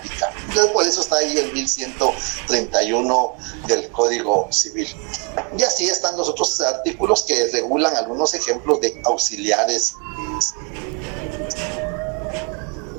Entonces, por eso está ahí el 1131 del Código Civil. Y así están los otros artículos que regulan algunos ejemplos de auxiliares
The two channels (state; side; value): quieter; left; 33.0 dB